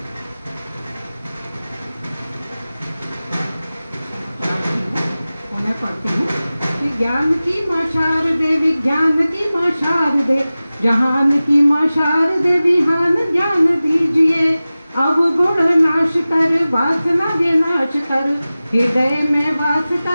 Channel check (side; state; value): both; inverted; correlation -0.97